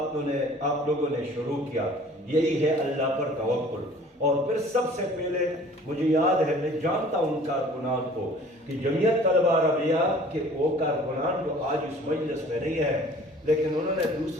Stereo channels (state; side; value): normal; both; correlation 0.49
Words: لوگوں نے شروع کیا۔ یہی ہے اللہ پر توکل۔ اور پھر سب سے پہلے مجھے یاد ہے، میں جانتا ہوں کارکنان کو کہ جمعیت طلبہ عربیہ کے وہ کارکنان جو آج اس مجلس میں نہیں ہے، لیکن انہوں نے